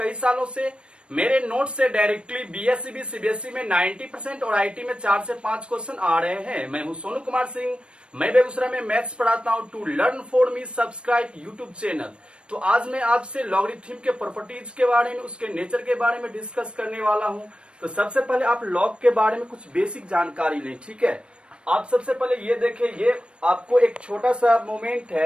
सालों से मेरे नोट से डायरेक्टली बीएससी भी सीबीएसई में 90% और आईटी में 4 से 5 क्वेश्चन आ रहे हैं। मैं हूं सोनू कुमार सिंह, मैं बेगूसराय में मैथ्स पढ़ाता हूं। To learn for me subscribe YouTube channel. तो आज मैं आपसे लॉगरिथम के प्रॉपर्टीज के बारे में, उसके नेचर के बारे में डिस्कस करने वाला हूं। तो सबसे पहले आप लॉग के बारे में कुछ बेसिक जानकारी लें, ठीक है। आप सबसे पहले ये देखें, ये आपको एक छोटा सा मोमेंट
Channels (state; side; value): late; left; 0.057 ms